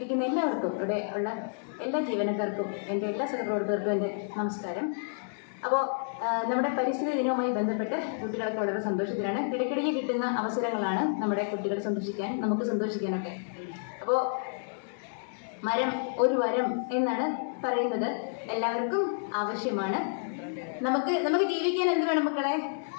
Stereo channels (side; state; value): right; silent; digital silence